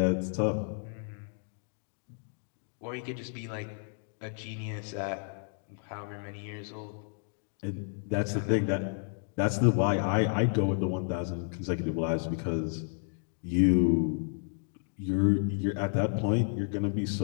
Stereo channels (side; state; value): right; silent; 57 dB below the other